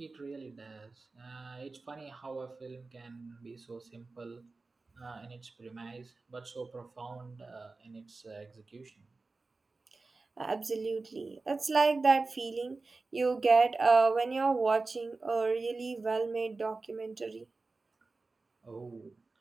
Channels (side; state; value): left; quieter; 3.7 dB